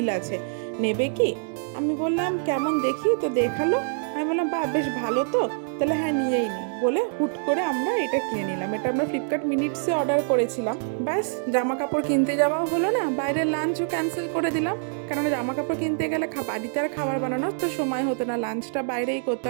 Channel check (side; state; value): left; silent; 61 dB below the other